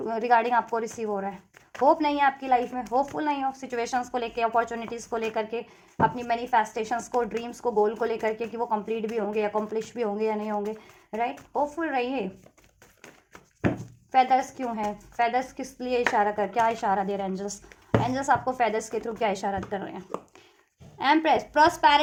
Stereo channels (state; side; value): identical; both; correlation 1.00